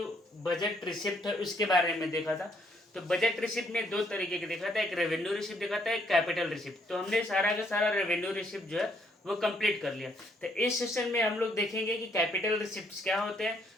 बजट रिसिप्ट है उसके बारे में देखा था। तो बजट रिसिप्ट में दो तरीके के देखा था, एक रेवेन्यू रिसिप्ट देखा था, एक कैपिटल रिसिप्ट। तो हमने सारा का सारा रेवेन्यू रिसिप्ट जो है वो कंप्लीट कर लिया। तो इस सेशन में हम लोग देखेंगे कि कैपिटल रिसिप्ट क्या होते हैं,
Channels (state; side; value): normal; both; correlation 0.70